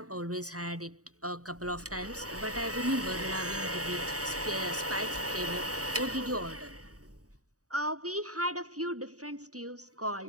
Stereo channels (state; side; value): late; left; 0.66 ms